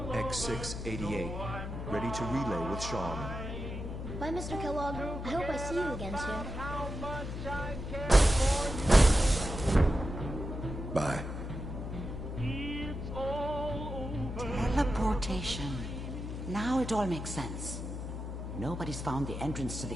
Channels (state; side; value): noise; left; hum, 6 dB below the sound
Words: X688. Ready to relay with Sean. Bye, Mr. Kellogg. I hope I see you again soon. Bye. Teleportation. Now it all makes sense. Nobody's found the entrance to the